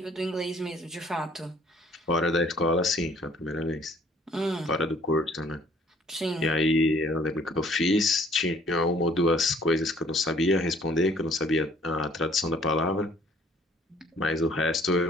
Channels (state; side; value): normal; both; correlation 0.58